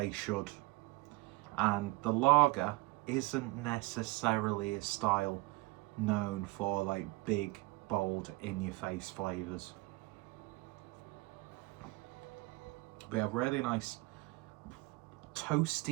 should. And the lager isn't necessarily a style known for like big, bold, in-your-face flavours. We have really nice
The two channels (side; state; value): left; quieter; 22.2 dB